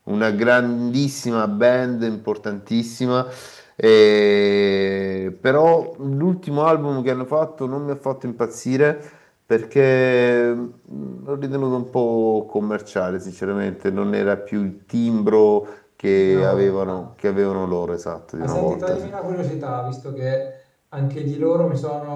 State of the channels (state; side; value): identical; both; correlation 1.00